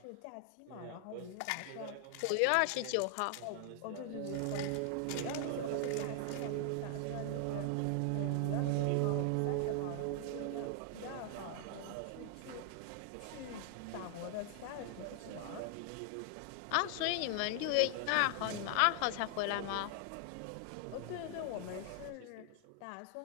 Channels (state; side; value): different; both; correlation 0.00